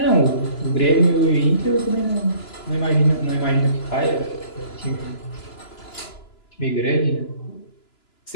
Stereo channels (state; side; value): late; right; 2.9 ms